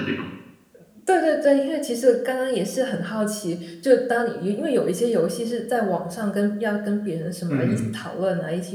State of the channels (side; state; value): both; identical; correlation 1.00